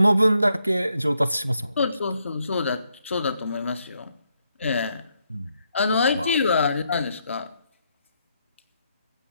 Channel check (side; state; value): both; inverted; correlation -0.78